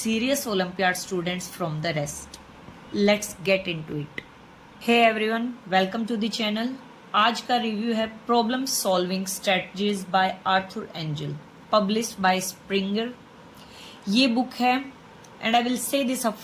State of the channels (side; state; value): both; identical; correlation 1.00